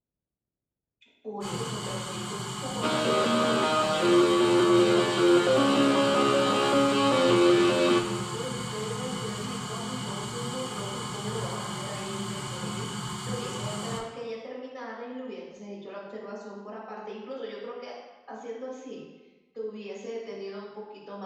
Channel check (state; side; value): identical; both; correlation 1.00